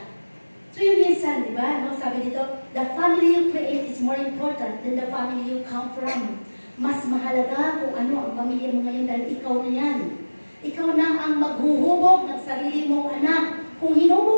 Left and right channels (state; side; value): inverted; both; correlation -1.00